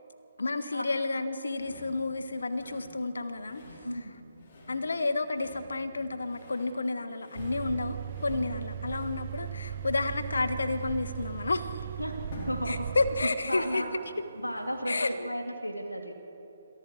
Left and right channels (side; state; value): both; inverted; correlation -0.88